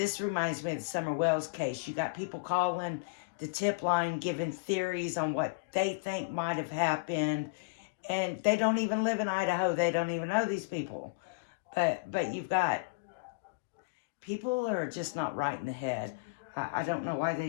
reminds me of the Summer Wells case. You got people calling the tip line, giving theories on what they think might have happened, and they don't even live in Idaho. They don't even know these people. But you've got people that are just not right in the head. I don't know why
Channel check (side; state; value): right; quieter; 30.7 dB